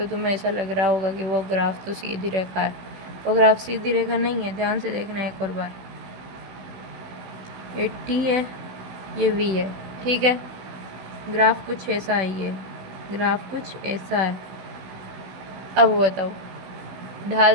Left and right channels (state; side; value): late; left; 16 ms